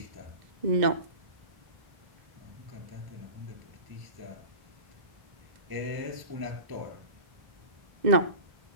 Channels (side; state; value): left; late; 2.0 ms